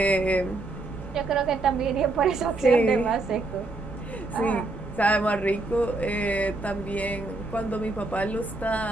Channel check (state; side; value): quieter; left; 3.1 dB